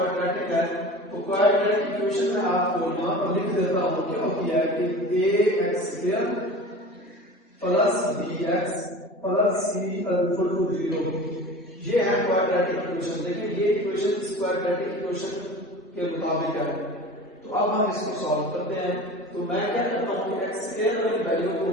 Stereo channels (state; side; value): normal; both; correlation 0.36